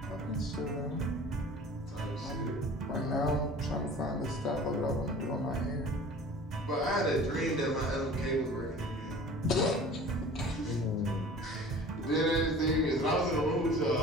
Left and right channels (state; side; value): normal; both; correlation 0.43